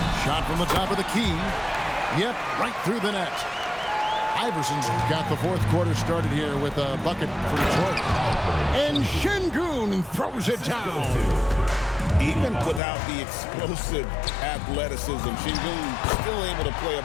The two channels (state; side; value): drops out; right; at 12.8 s